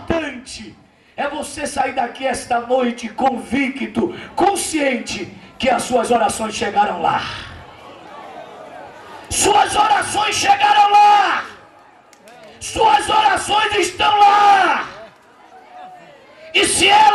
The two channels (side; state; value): both; identical; correlation 1.00